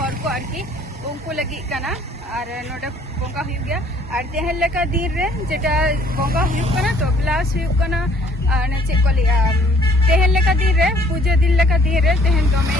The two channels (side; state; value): both; normal; correlation 0.60